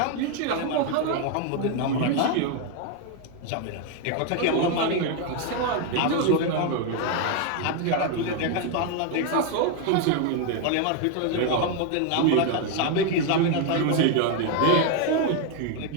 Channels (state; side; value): different; both; correlation 0.01